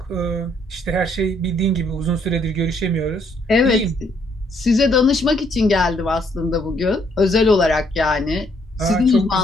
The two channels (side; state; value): both; normal; correlation 0.69